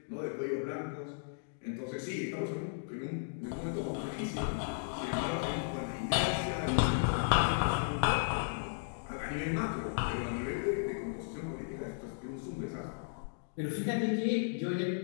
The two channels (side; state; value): right; silent; digital silence